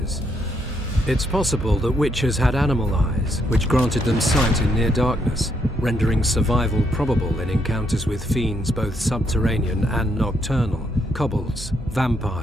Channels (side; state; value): both; normal; correlation 0.75